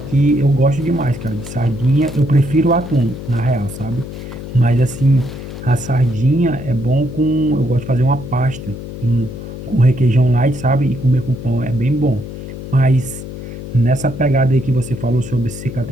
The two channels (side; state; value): left; noise; hum, 10 dB below the sound